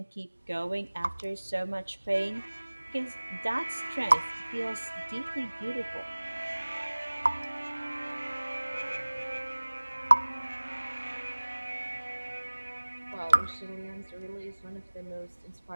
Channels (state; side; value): inverted; both; correlation -1.00